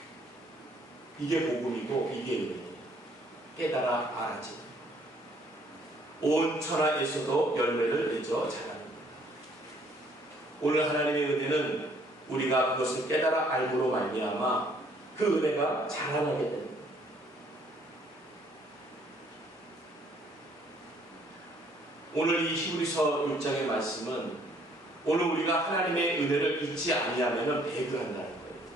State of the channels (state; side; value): normal; both; correlation 0.63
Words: 이게 복음이고 이게 은혜예요. 깨달아 알아지. 온 천하에서도 열매를 맺어 자라는 겁니다. 오늘 하나님의 은혜는 우리가 그것을 깨달아 알므로 말미암아 그 은혜가 자라나게 됩니다. 오늘 이 히브리서 6장의 말씀은 오늘 우리가 하나님의 은혜를 잊지 아니하면 배교한다는 거예요.